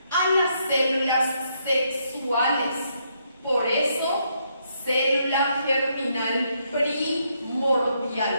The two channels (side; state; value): both; inverted; correlation -0.75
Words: a las células sexuales. Por eso, célula germinal